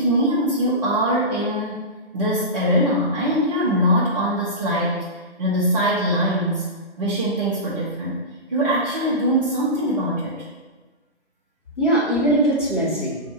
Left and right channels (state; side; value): normal; both; correlation -0.16